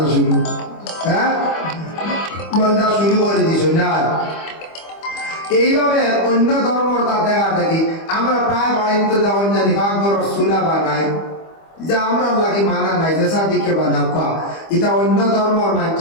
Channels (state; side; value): late; right; 25 ms